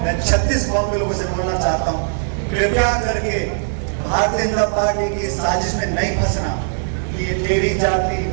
मैं 36 कौम के लोगों से बोलना चाहता हूँ, कृपया करके भारतीय जनता पार्टी की साजिश में नहीं फंसना। ये तेरी जाति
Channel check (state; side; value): silent; left; digital silence